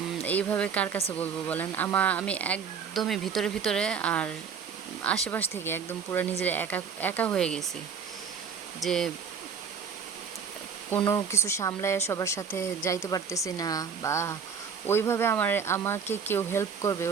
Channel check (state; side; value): quieter; left; 6.5 dB